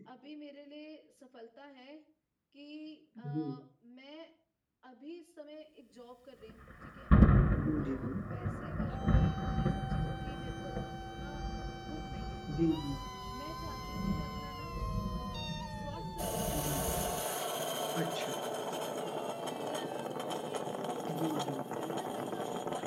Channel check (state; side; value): identical; both; correlation 1.00